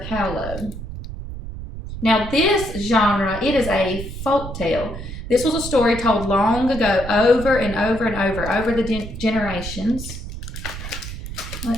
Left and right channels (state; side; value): noise; right; rumble, 9 dB below the sound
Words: Now, this genre, it is a folk tale. This was a story told long ago, over and over and over the generations.